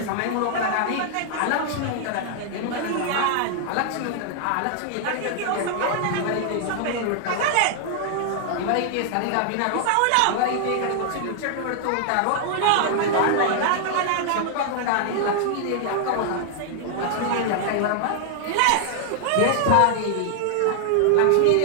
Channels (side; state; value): both; different; correlation -0.01